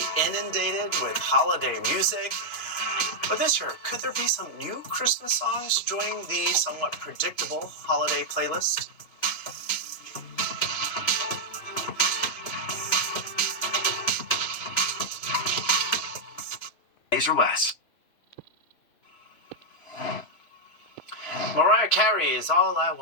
inundated with holiday music. But this year, could there be some new Christmas songs joining the somewhat predictable holiday playlist? Days or less. Mariah Carey's All I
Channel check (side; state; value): right; late; 3.0 ms